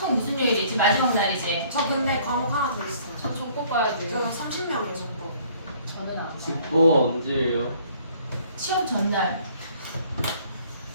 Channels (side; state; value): both; inverted; correlation -0.58